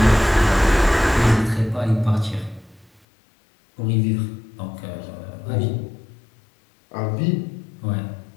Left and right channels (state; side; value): drops out; right; at 3.0 s